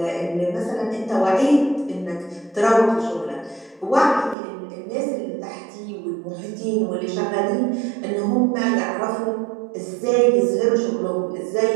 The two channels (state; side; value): drops out; left; at 4.4 s